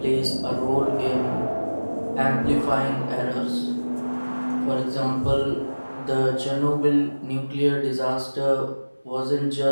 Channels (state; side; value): inverted; both; correlation -1.00